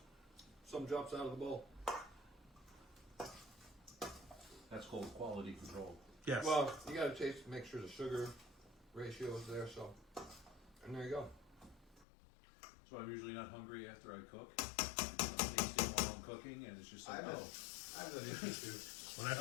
some drops out of the bowl. That's called quality control. Yes. Well, you gotta taste, make sure the sugar ratio is there. So, and there you go. So I'm usually not hungry after I cook. I'm tasting while I'm cooking, and it's just like, oh. I have that issue too. when I I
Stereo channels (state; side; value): drops out; right; at 12.1 s